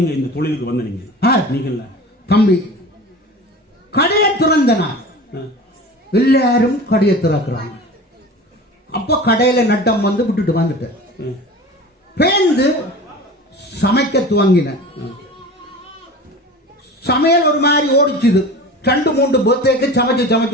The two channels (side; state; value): both; normal; correlation 0.36